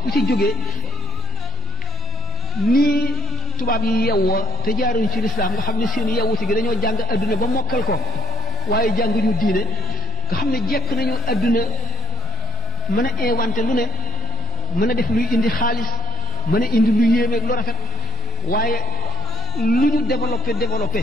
ci jógee nii tubaab yi yewwoo te jaaruñu ci lislaam nga xam ne seen yewwuti gi dañoo jàng adduna ba mokkal ko waaye jànguñu diine nga xam ne jekk nañu adduna mën a inventé lu ne mën a def luy indi xaalis mën a indi lu yéemeeg lu rafet waaye lu ñu développé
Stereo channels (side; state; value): both; normal; correlation 0.61